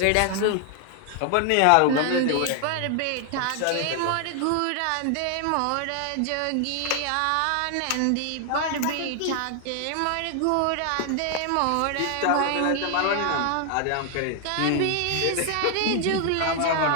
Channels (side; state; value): both; different; correlation 0.00